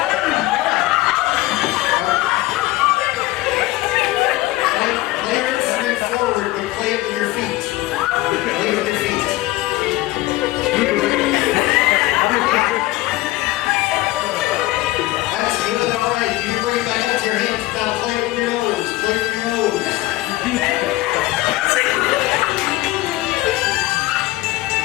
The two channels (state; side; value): quieter; right; 18.3 dB